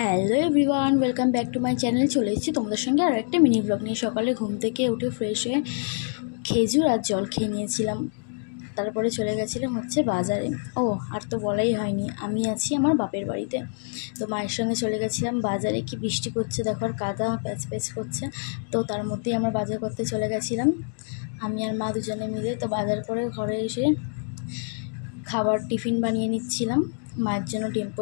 everyone, welcome back to my channel. চলে এসেছি তোমাদের সঙ্গে আর একটা মিনি ব্লগ নিয়ে। সকালে ঘুম থেকে উঠে ফ্রেশ হয়ে খেজুর আর জল খেয়ে নিয়েছিলাম। তারপরে চলে গেছিলাম বাজারে। আর তো বলাই হয়নি, আমি আছি আমার বাপের বাড়িতে। তো মায়ের সঙ্গে চলে গেছিলাম বাজারে। কি বৃষ্টি করছে দেখো, আর কাদা প্যাচ প্যাচ করছে। তো তার মধ্যেই আমরা বাজার করতে চলে গেছিলাম, আমি আর মা দুজনে মিলে। তো বাজার করে ঘরে এসে খাবার টিফিন বানিয়ে নিচ্ছিলাম। মায়ের জন্য ডিম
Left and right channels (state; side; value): silent; right; digital silence